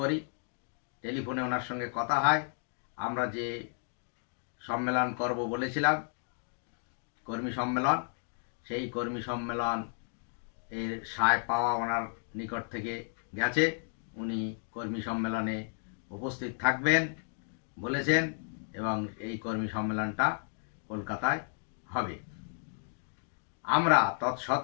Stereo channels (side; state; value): right; silent; 56 dB below the other